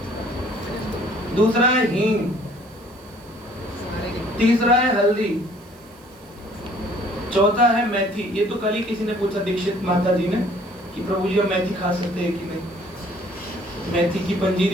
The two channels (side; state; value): right; noise; hiss, 27 dB below the sound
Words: दूसरा है हींग, तीसरा है हल्दी, चौथा है मेथी। ये तो कल ही किसी ने पूछा दीक्षित माता जी ने कि प्रभु जी हम मेथी खा सकते हैं कि नहीं। मेथी की